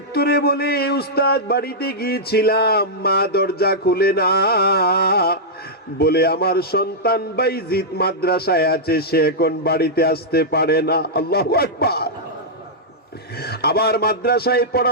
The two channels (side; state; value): both; normal; correlation -0.09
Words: বলে, উস্তাদ বাড়িতে গিয়েছিলাম, মা দরজা খুলে না, বলে আমার সন্তান বাইজিদ মাদ্রাসায় আছে, সে এখন বাড়িতে আসতে পারে না। আল্লাহু আকবার। আবার মাদ্রাসায়